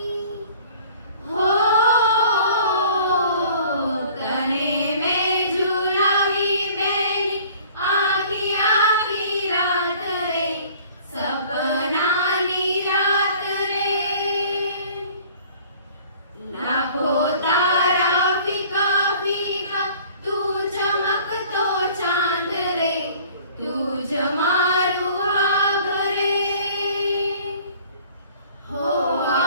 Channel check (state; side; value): inverted; both; correlation -0.51